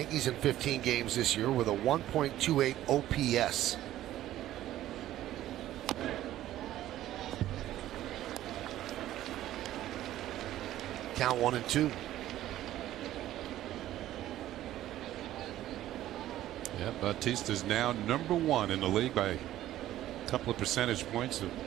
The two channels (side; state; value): left; quieter; 13.6 dB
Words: in 15 games this year with a 1.28 OPS. Count 1-2. Yeah, Bautista's now number 1 in the league by a couple of percentage points